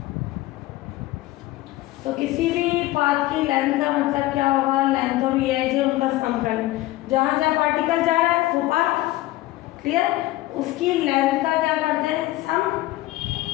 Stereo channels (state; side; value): quieter; right; 17.3 dB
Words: तो किसी भी पाथ की लेंथ का मतलब क्या होगा, लेंथ ऑफ ई आई जे, उनका सम करना। जहाँ जहाँ पार्टिकल जा रहा है वो पाथ, क्लियर, उसकी लेंथ का क्या करते हैं, सम,